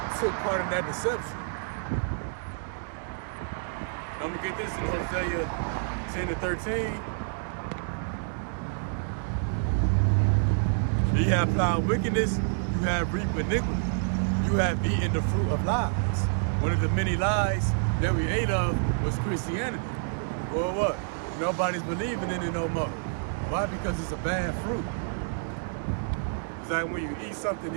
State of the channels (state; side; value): silent; left; digital silence